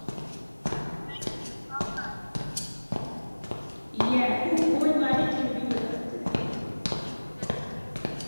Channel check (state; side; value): inverted; both; correlation -1.00